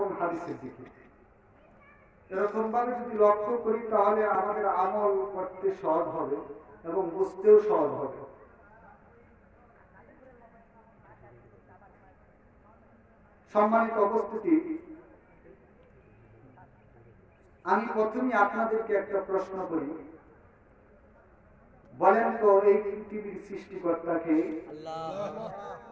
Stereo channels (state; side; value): identical; both; correlation 1.00